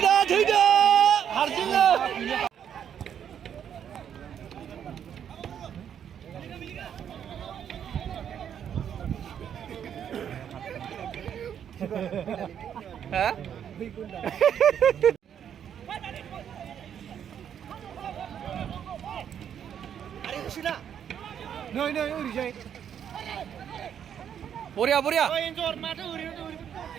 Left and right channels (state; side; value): quieter; left; 8.9 dB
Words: 들다 하르진아 hả Nơi nơi uri jai. 보랴 보랴